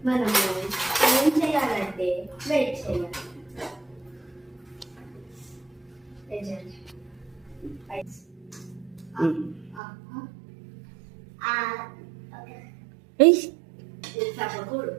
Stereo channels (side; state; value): left; drops out; at 9.8 s